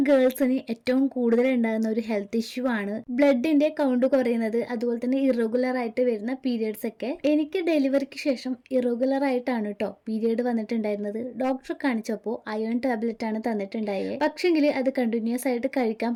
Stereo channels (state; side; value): identical; both; correlation 1.00